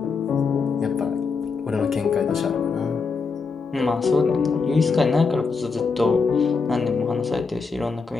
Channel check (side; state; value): right; quieter; 4.8 dB